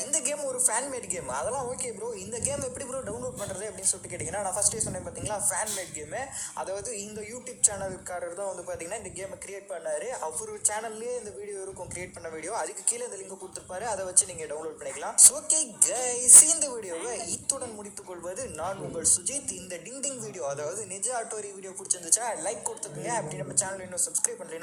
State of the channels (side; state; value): both; identical; correlation 1.00